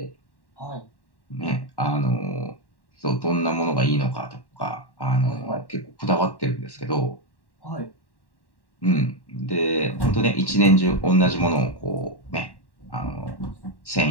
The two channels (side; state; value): right; late; 1.1 ms